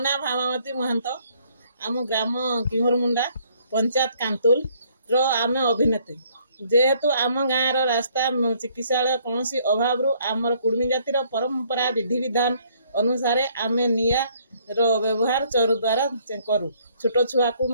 ନାଁ ଭାମାବତୀ ମହାନ୍ତ। ଆମ ଗ୍ରାମ କିହରମୁଣ୍ଡା, ପଞ୍ଚାୟତ କାନ୍ତୁଲର ଆମେ ଅଭିନେତ୍ରୀ। ଯେହେତୁ ଆମ ଗାଁର ରାସ୍ତା, ଚିକିତ୍ସାଳୟ କୌଣସି ଅଭାବରୁ ଆମର କୁଡ଼ୁମି ଜାତିର ପରମ୍ପରା ବିଧିବିଧାନ ଅନୁସାରେ ଆମେ ନିଆଁର ବ୍ୟବହାର ଚରୁ ଦ୍ୱାରା କରୁ। ଛୋଟ ଛୁଆକୁ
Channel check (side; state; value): both; inverted; correlation -0.65